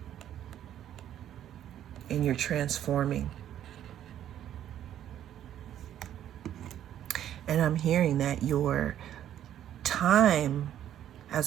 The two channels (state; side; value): quieter; left; 11.0 dB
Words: And you're transforming. And I'm hearing that your time